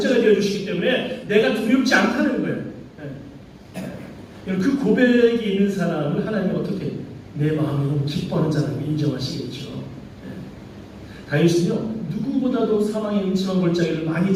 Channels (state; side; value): identical; both; correlation 1.00